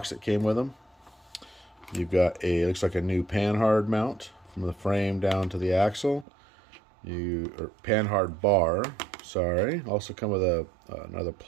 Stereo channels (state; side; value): drops out; left; at 6.2 s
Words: that came with them. You've got a, looks like a new panhard mount from the frame down to the axle. Or panhard bar, sorry. Also come with another